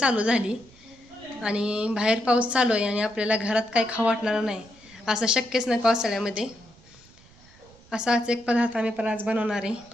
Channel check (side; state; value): right; noise; rumble, 26 dB below the sound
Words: झाली आणि बाहेर पाऊस चालू आहे आणि आपल्याला घरात काही खाऊ वाटणार नाही असं शक्यच नाही पावसाळ्यामध्ये. असाच एक पदार्थ आम्ही पण आज बनवणार आहे,